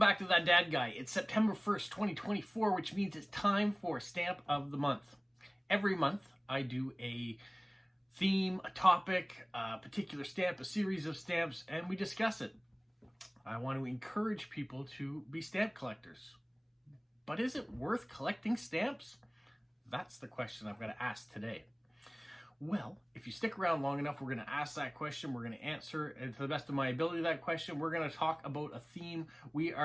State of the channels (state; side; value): identical; both; correlation 1.00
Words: to That Dad Guy. It's September 1st, 2024, which means it's time for Stamp of the Month. Every month, I do a theme, a topic, a particular stamp, a series of stamps, and we discuss it. I want to encourage people to be stamp collectors. But is it worth collecting stamps? That's the question I'm going to ask today. Well, if you stick around long enough, we're going to ask that question. We're going to answer to the best of my ability that question. We're going to talk about a theme. We